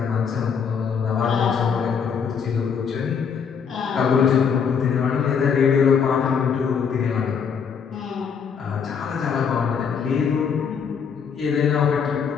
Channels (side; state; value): right; quieter; 6.7 dB